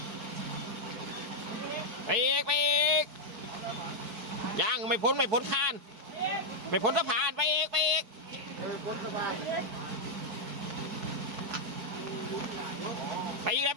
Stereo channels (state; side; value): late; left; 4.7 ms